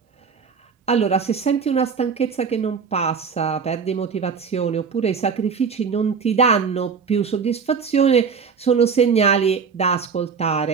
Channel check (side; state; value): left; quieter; 5.9 dB